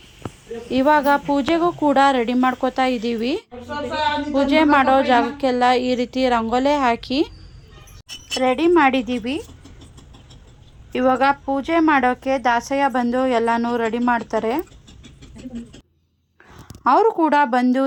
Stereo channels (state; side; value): identical; both; correlation 1.00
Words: ಇವಾಗ ಪೂಜೆಗೂ ಕೂಡ ರೆಡಿ ಮಾಡ್ಕೋತಾ ಇದ್ದೀವಿ. ಪೂಜೆ ಮಾಡೋ ಜಾಗಕ್ಕೆಲ್ಲ ಈ ರೀತಿ ರಂಗೋಲೆ ಹಾಕಿ ರೆಡಿ ಮಾಡಿದ್ದೀವಿ. ಇವಾಗ ಪೂಜೆ ಮಾಡೋಕ್ಕೆ ದಾಸಯ್ಯ ಬಂದು ಎಲ್ಲನೂ ರೆಡಿ ಮಾಡ್ತಾರೆ. ಅವರು ಕೂಡ ಬಂದು